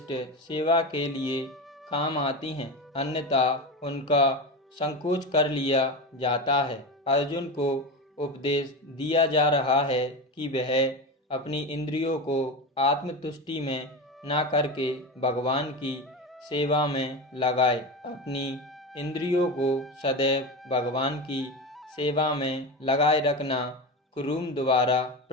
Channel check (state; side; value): normal; both; correlation 0.22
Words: सेवा के लिए काम आती हैं, अन्यथा उनका संकोच कर लिया जाता है। अर्जुन को उपदेश दिया जा रहा है कि वह अपनी इंद्रियों को आत्मतुष्टि में ना करके भगवान की सेवा में लगाए। अपनी इंद्रियों को सदैव भगवान की सेवा में लगाए रखना कुरुम द्वारा